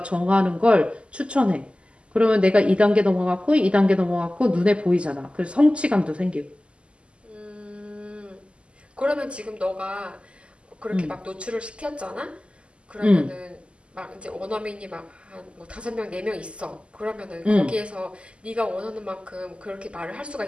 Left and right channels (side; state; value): left; late; 0.053 ms